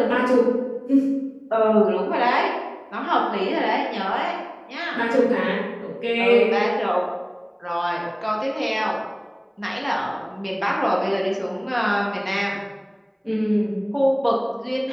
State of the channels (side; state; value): both; identical; correlation 1.00